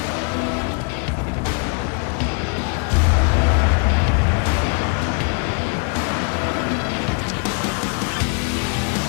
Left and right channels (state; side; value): quieter; right; 37.7 dB